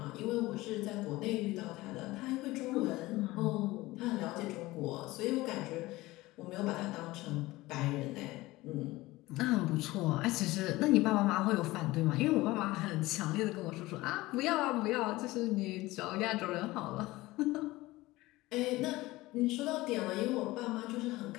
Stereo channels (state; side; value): quieter; right; 19.2 dB